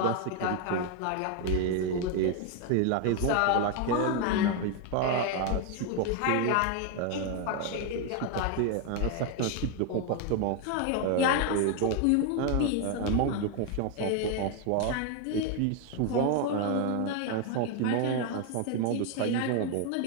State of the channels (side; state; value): both; different; correlation 0.01